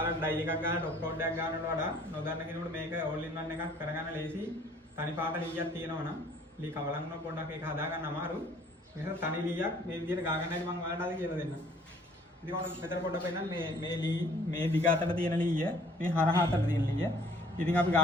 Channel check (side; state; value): both; normal; correlation 0.57